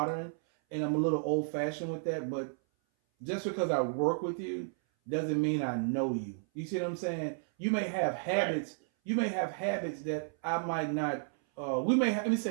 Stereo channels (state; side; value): silent; left; 56 dB below the other